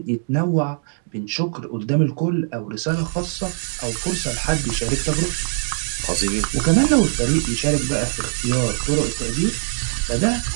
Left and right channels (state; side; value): silent; left; digital silence